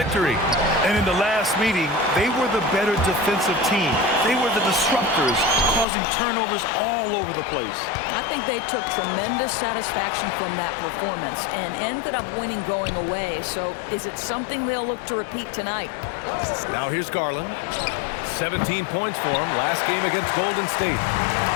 And in the last meeting, they were the better defensive team. They were the disruptors, causing turnovers all over the place. I think they took tremendous satisfaction from that performance and ended up winning going away. So is it something they'll look to repeat tonight? Now here's Garland. 17 points for him last game against Golden State.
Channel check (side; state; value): right; drops out; at 5.9 s